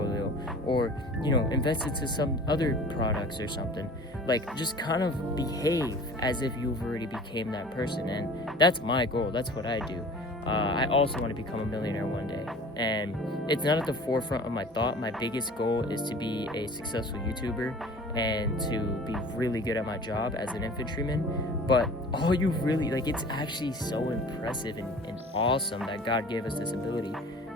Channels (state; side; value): normal; both; correlation 0.44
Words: or, you know, invest into some other products or something. Like, just kind of behave as if you've already became that person. And that's my goal. That's what I do. I also want to become a millionaire one day, and it's not at the forefront of my thought. My biggest goal is to be a successful YouTuber and to be really good at my job as an infantryman. But all you really, like, it's actually so impressive and awesome that God gave us this ability